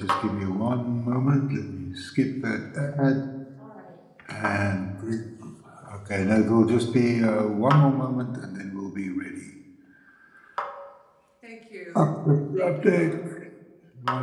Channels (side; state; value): both; identical; correlation 1.00